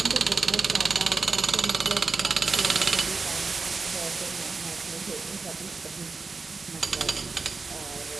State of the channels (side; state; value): left; quieter; 4.3 dB